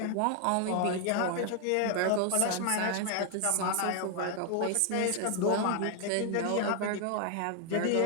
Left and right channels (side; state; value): both; different; correlation 0.00